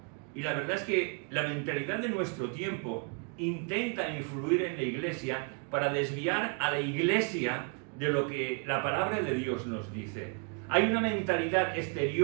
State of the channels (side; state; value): left; quieter; 36.4 dB